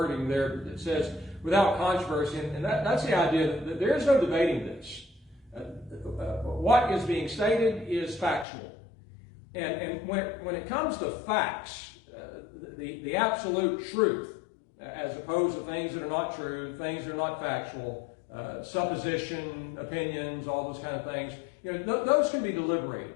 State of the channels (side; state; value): right; drops out; at 8.5 s